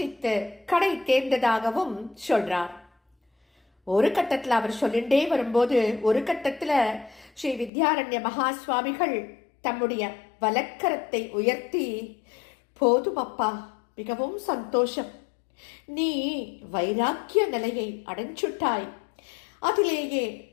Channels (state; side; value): drops out; right; at 7.7 s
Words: கடை தேர்ந்ததாகவும் சொல்றார். ஒரு கட்டத்தில் அவர் சொல்லிண்டே வரும்போது ஒரு கட்டத்தில் ஸ்ரீ வித்யாரண்ய மகா சுவாமிகள் தம்முடைய வலக்கரத்தை உயர்த்தி, போதும் அப்பா, மிகவும் சந்தோஷம், நீ வைராக்கிய நிலையை அடைஞ்சுட்டாய், அதிலேயே